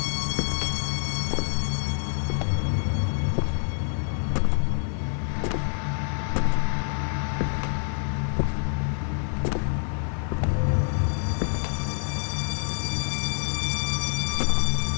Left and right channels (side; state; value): right; silent; 55 dB below the other